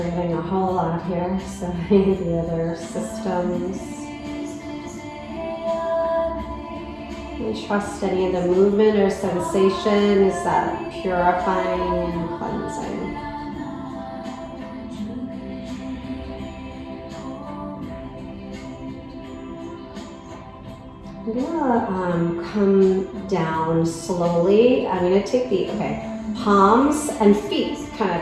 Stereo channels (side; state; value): both; identical; correlation 1.00